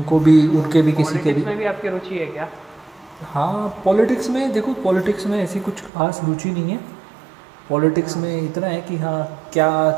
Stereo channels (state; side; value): drops out; left; at 5.9 s